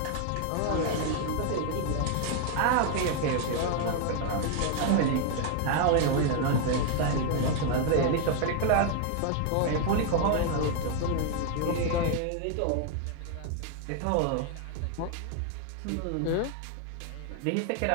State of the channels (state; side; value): different; both; correlation 0.00